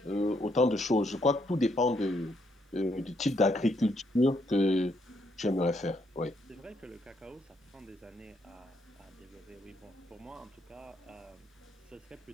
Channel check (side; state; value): both; normal; correlation 0.74